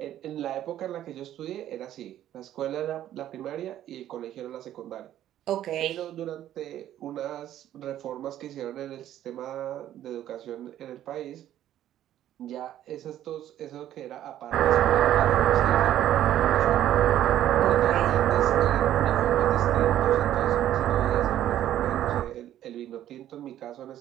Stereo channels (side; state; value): left; quieter; 12.1 dB